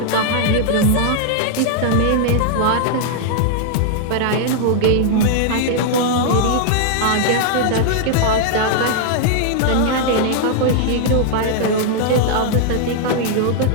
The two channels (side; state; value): both; different; correlation -0.01